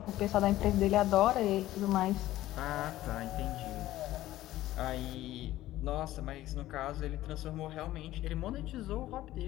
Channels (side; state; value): right; quieter; 15.1 dB